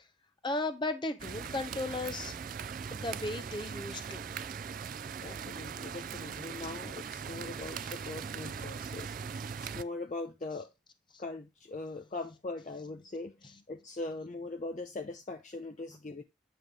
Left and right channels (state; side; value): normal; both; correlation 0.40